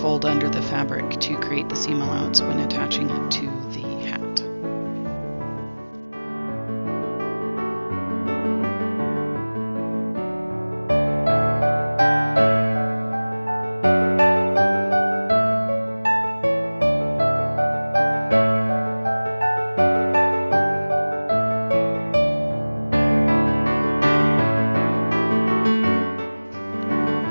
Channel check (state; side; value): inverted; both; correlation -1.00